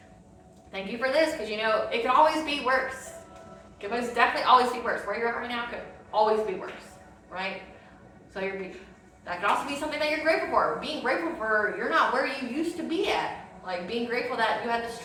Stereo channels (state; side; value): identical; both; correlation 1.00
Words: Thank you for this because, you know, it can always be worse. It can most definitely always be worse. Where you're at right now could always be worse, right? So that could also be something that you're grateful for. Being grateful for you're not where you used to be at. Like being grateful that you had the